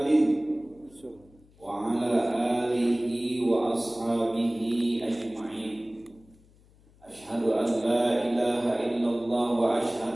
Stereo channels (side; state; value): left; noise; hum, 28 dB below the sound